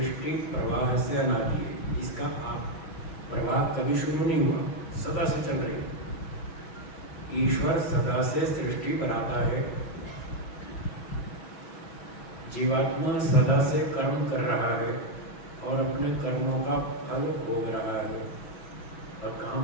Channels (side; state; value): right; late; 6.2 ms